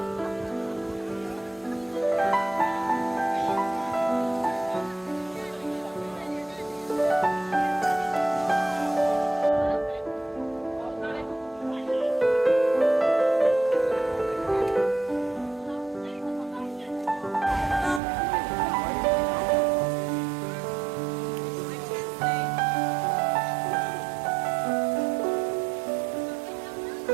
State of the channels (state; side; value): drops out; left; at 18.0 s